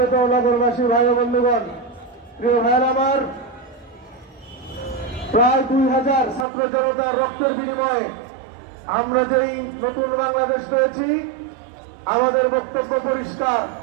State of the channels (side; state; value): left; drops out; at 6.5 s